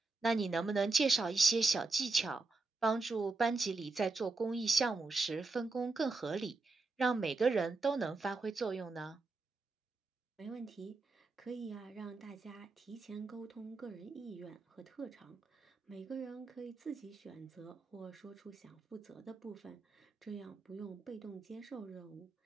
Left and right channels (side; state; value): left; quieter; 3.8 dB